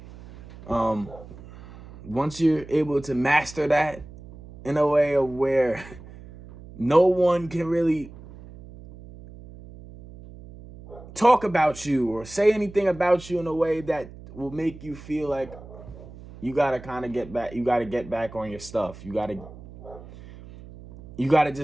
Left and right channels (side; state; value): right; noise; hum, 17 dB below the sound